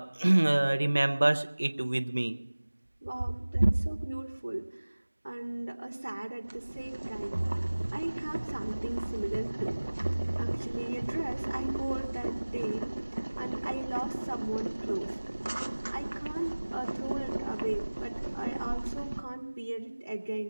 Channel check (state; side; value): inverted; both; correlation -1.00